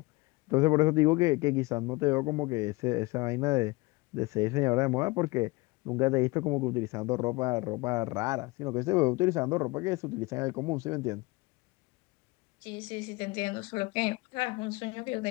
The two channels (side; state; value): right; quieter; 23.6 dB